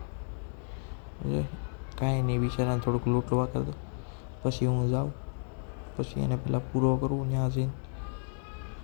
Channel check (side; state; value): right; silent; 57 dB below the other